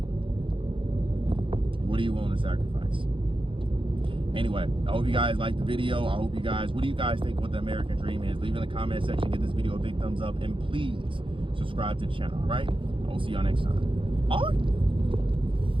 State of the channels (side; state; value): left; late; 0.25 ms